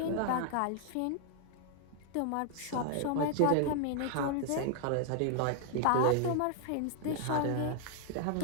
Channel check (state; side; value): different; both; correlation 0.00